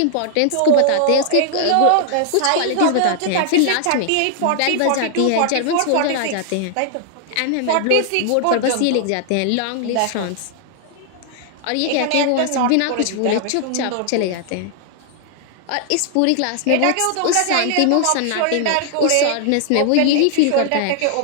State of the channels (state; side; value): different; both; correlation 0.00